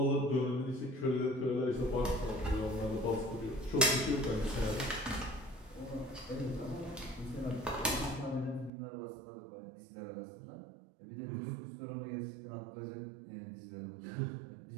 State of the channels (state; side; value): drops out; left; at 8.7 s